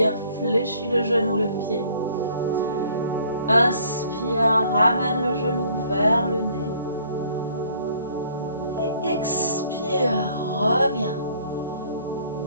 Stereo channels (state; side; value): inverted; both; correlation -0.59